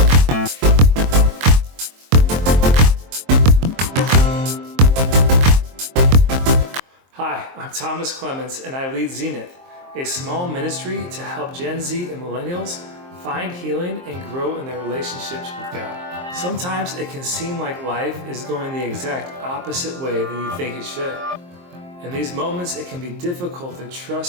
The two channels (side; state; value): left; late; 23 ms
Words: Hi, I'm Thomas Clements, and I lead Zenith, a small ministry to help Gen Z and millennials find healing and grow in their relationships with God. Sometimes it can seem like life is going the exact opposite way than you think it should. In these moments, it can be difficult to